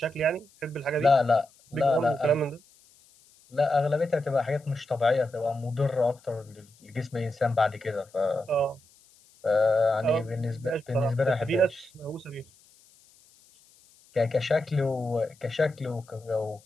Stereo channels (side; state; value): left; noise; hiss, 29 dB below the sound